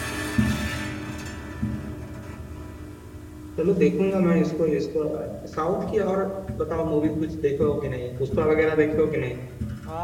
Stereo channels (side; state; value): both; identical; correlation 1.00